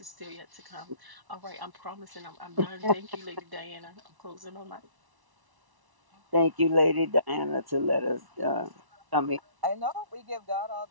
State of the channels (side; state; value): left; late; 1.1 ms